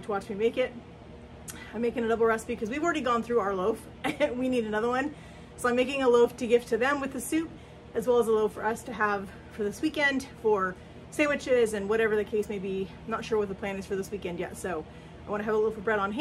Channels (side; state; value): both; identical; correlation 1.00